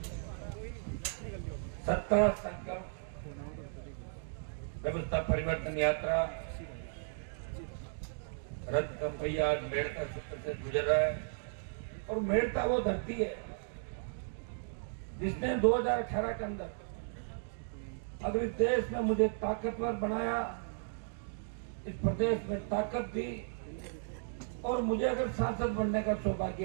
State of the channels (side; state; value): left; silent; digital silence